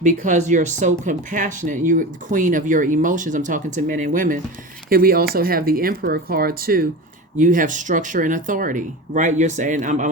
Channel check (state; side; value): normal; both; correlation 0.29